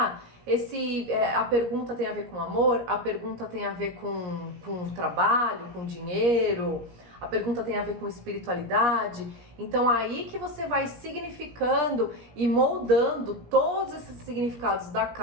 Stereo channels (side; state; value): left; late; 17 ms